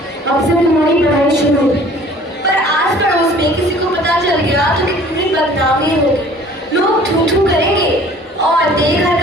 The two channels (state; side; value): normal; both; correlation 0.51